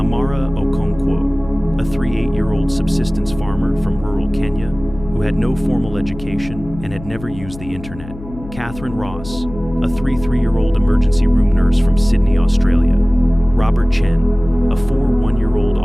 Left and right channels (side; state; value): left; noise; hum, 15 dB below the sound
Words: Okonkwo, a 8-year-old subsistence farmer from rural Kenya, who had no formal education and had never used the internet. Catherine Ross, a 3-year-old emergency room nurse from Sydney, Australia. Robert Chen, a 1-year-old